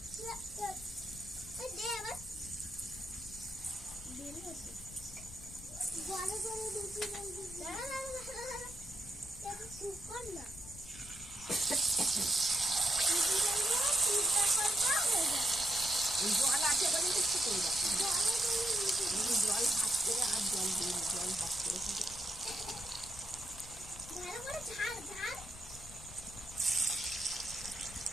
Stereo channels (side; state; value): left; noise; rumble, 16 dB below the sound